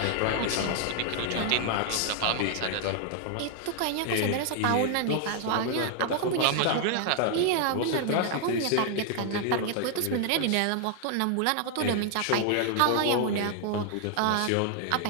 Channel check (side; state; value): both; different; correlation 0.00